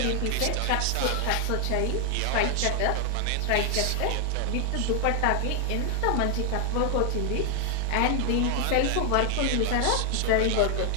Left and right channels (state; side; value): different; both; correlation 0.00